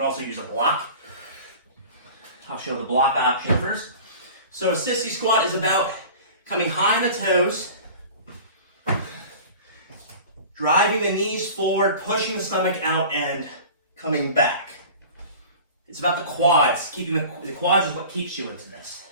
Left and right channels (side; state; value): both; inverted; correlation -0.40